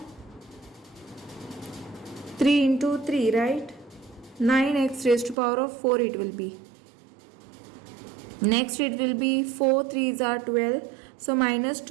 3 into 3, right? 9x raised to power of 4 it will be. Next it will be 4 3s are 12, so minus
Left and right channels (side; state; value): left; drops out; at 5.4 s